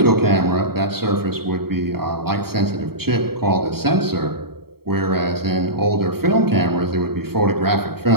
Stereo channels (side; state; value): left; late; 0.95 ms